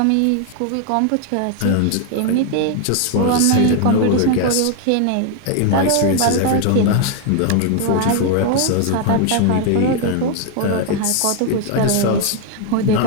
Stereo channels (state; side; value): different; both; correlation 0.00